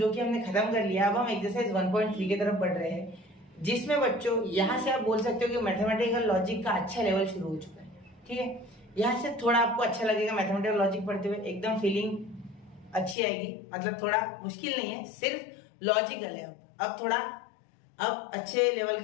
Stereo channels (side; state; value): right; drops out; at 13.2 s